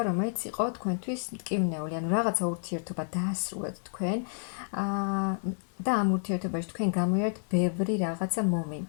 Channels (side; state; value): right; silent; digital silence